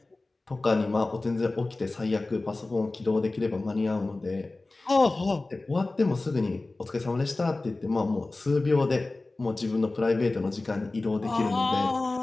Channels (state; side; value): quieter; right; 3.1 dB